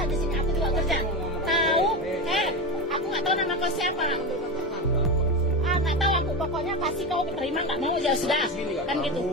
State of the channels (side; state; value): both; normal; correlation 0.18